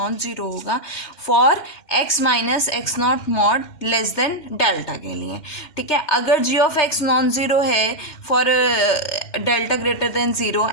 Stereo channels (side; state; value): right; late; 2.1 ms